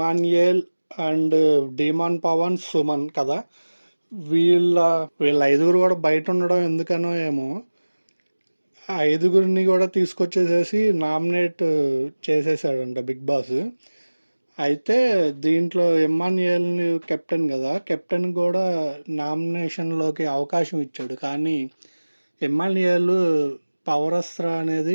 అండ్ డీమాన్ పవన్, సుమన్ కదా. వీళ్ళ వీళ్ళ ఐదుగురు కూడా బయట ఉండడం ఎందుకనో ఏమో ఆ ఐదుగురిని కూడా తీసుకొచ్చేసేసి నామినేట్ చేసేసాడంట బిగ్ బాస్. అయితే దీంట్లో ఇమ్మాన్యుయల్ని కెప్టెన్ కదా, కెప్టెన్ కూడా నామినేషన్లోకి అవకాశం ఇచ్చాడు. కానీ ఇమ్మాన్యుయల్ పవరస్త్ర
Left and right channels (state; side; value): inverted; both; correlation -1.00